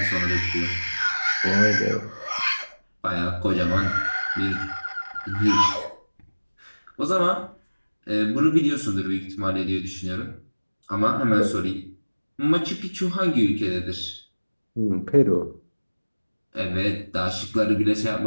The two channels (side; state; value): both; inverted; correlation -1.00